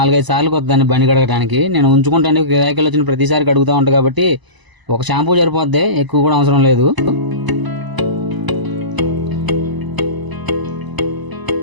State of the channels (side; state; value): left; late; 1.0 ms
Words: సార్లు కొద్దాన్ని బండి కడగడానికి. నేను ఉంచుకుంటాను, గిరాకీలు వచ్చిన ప్రతిసారి కడుగుతూ ఉంటాను కాబట్టి ఒక షాంపూ సరిపోద్ది, ఎక్కువ కూడా అవసరం లేదు.